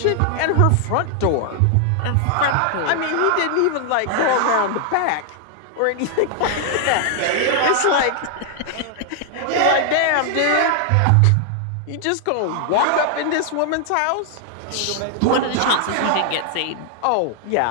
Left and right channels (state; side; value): different; both; correlation 0.00